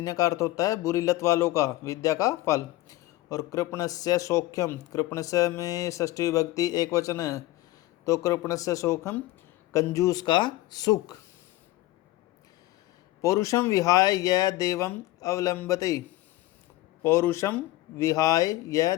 का अर्थ होता है बुरी लत वालों का विद्या का फल। और कृपणस्य सौख्यम, कृपणस्य में षष्ठी विभक्ति एक वचन है, तो कृपणस्य सौख्यम कंजूस का सुख। पौरुषम विहाय यह देवम अवलंबते, पौरुषम विहाय यह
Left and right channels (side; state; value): right; quieter; 17.1 dB